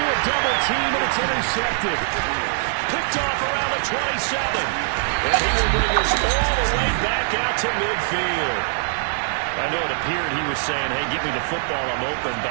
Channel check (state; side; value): silent; left; digital silence